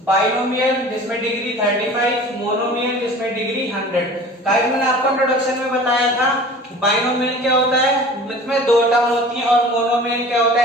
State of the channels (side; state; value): both; normal; correlation 0.42